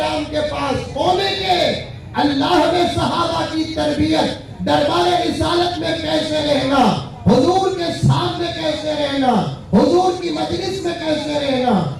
کے پاس ہونے کے، اللہ نے صحابہ کی تربیت دربار رسالت میں کیسے رہنا، حضور کے سامنے کیسے رہنا، حضور کی مجلس میں کیسے رہنا،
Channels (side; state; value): both; identical; correlation 1.00